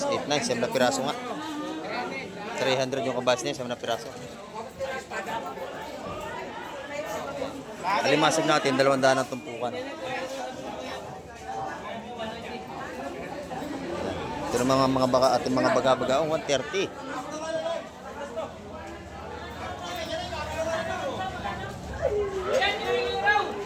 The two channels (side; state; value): both; identical; correlation 1.00